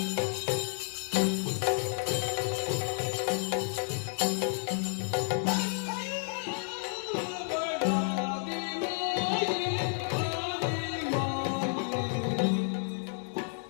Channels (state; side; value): silent; right; 57 dB below the other